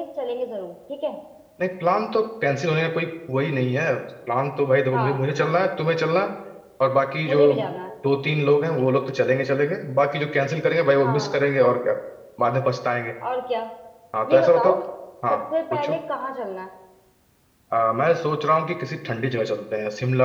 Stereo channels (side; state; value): both; identical; correlation 1.00